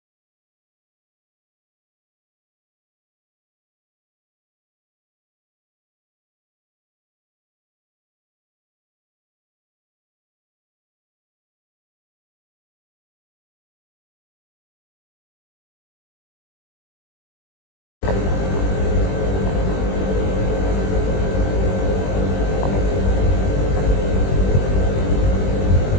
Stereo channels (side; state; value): right; late; 21 ms